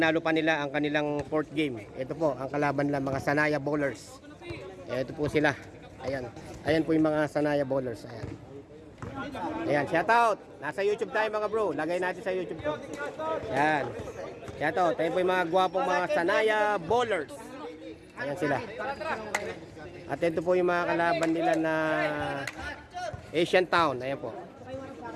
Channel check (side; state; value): both; identical; correlation 1.00